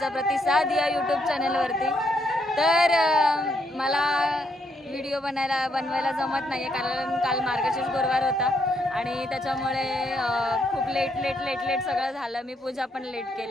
प्रतिसाद या यूट्यूब चॅनलवरती। तर मला व्हिडिओ बनवायला जमत नाही आहे कारण काल मार्गशीर्ष गुरुवार होता आणि त्याच्यामुळे खूप लेट सगळं झालं। मी पूजा पण लेट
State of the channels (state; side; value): normal; both; correlation 0.75